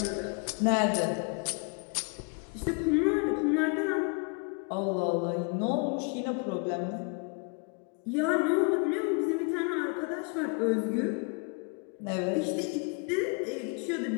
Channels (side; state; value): right; quieter; 35.6 dB